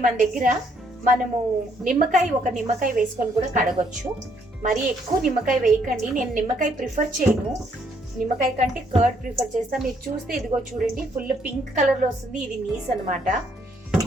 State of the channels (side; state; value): both; normal; correlation 0.69